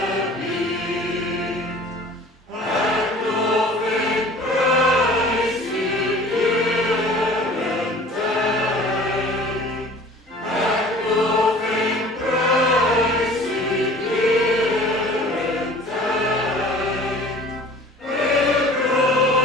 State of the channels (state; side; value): normal; both; correlation 0.46